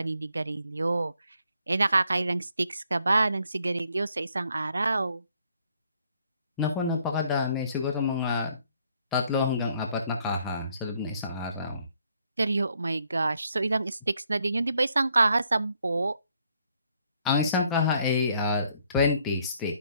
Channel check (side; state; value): both; inverted; correlation -0.69